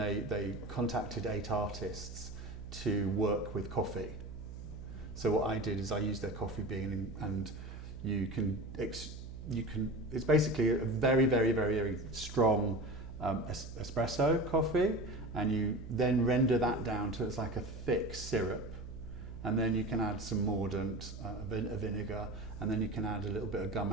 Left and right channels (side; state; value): right; noise; hum, 11 dB below the sound